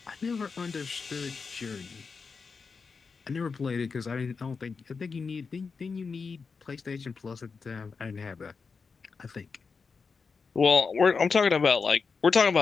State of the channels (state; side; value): quieter; right; 5.0 dB